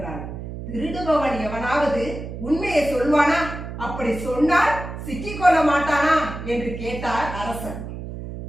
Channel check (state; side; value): noise; right; hum, 9 dB below the sound